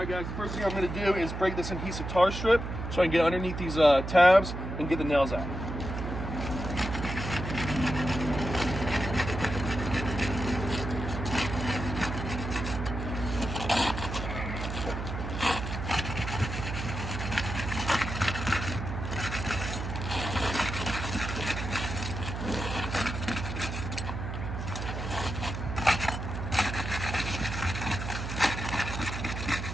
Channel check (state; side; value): noise; right; hum, 5 dB below the sound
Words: guys, the first thing I'm going to do is break this adhesive tar strip so I can get underneath these tabs and get the nails out.